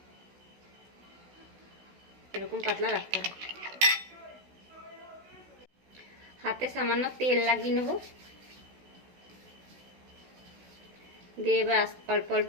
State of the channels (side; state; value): left; late; 16 ms